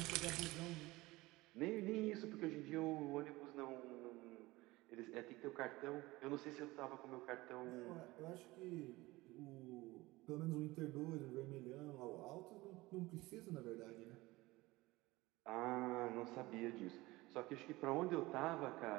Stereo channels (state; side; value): quieter; left; 20.3 dB